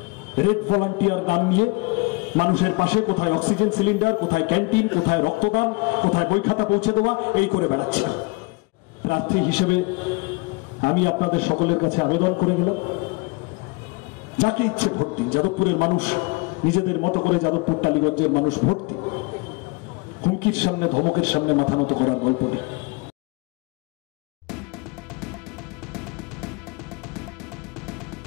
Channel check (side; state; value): right; quieter; 27.8 dB